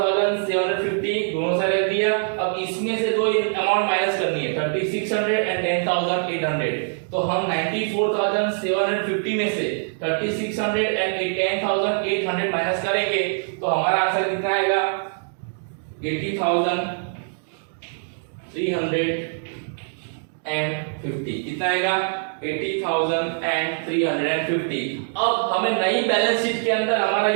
दोनों साइड रख दिया। अब इसमें से दो अमाउंट माइनस करनी है, 3600 एंड 10,800। तो हम 94,750 में से 3600 एंड 10,800 माइनस करेंगे तो हमारा आंसर कितना आएगा, 80,350। कितना आएगा, 80,350। अब हमें नई बैलेंस शीट के अंदर हमारा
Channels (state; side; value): silent; left; digital silence